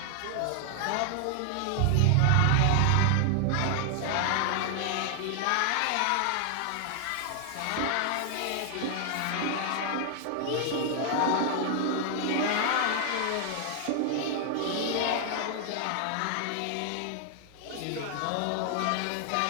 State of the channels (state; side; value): different; both; correlation 0.00